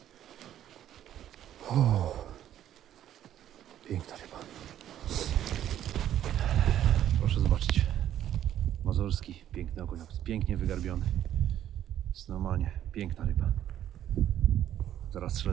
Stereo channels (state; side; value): quieter; left; 11.3 dB